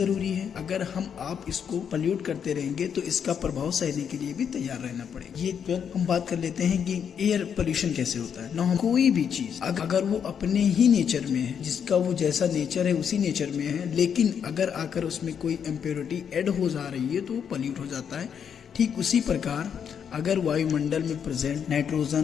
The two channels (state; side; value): quieter; right; 7.7 dB